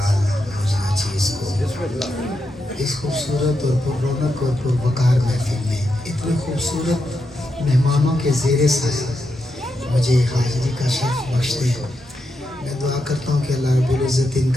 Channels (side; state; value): both; normal; correlation 0.85